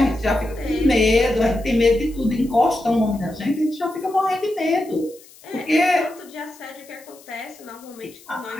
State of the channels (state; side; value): noise; left; hiss, 23 dB below the sound